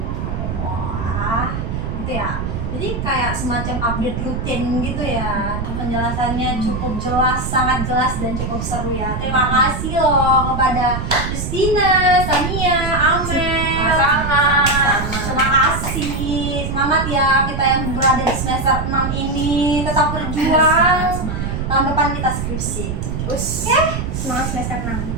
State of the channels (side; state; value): right; noise; rumble, 3 dB below the sound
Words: wah, gitu ya. Jadi kayak semacam update rutin gitu ya. Penjelasannya cukup jelas, sangat jelas dan cukup seru ya. Terima kasih loh kepada Justina, Sania, Amel. Sama-sama. Terima kasih. Semangat ya kita yang berada di semester 6 ini. Tetap berjuang. Tahun depan kita skripsi. Semangat semester 6.